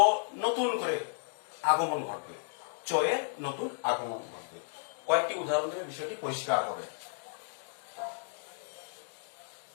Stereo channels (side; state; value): right; silent; digital silence